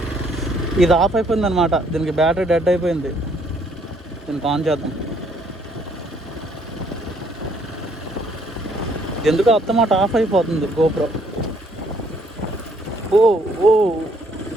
ఇది ఆఫ్ అయిపోయింది అనమాట. దీనికి బ్యాటరీ డెడ్ అయిపోయింది. దీనికి ఆన్ చేద్దాం. ఎందుకు అత్తమాట ఆఫ్ అయిపోతుంది గోప్రో. ఓ ఓ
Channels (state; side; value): normal; both; correlation 0.66